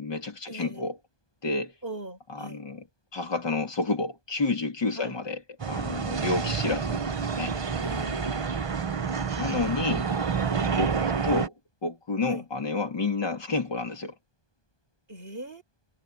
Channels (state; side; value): late; right; 1.2 ms